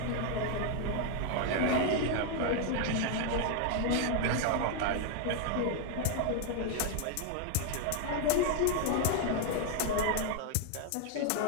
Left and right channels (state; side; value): different; both; correlation 0.00